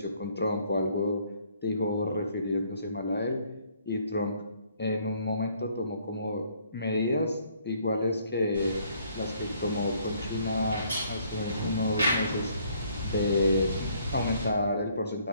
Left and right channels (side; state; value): both; inverted; correlation -0.64